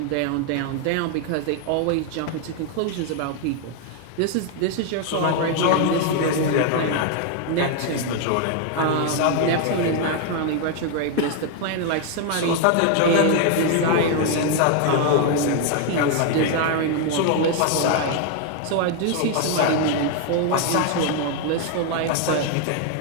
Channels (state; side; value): different; both; correlation 0.00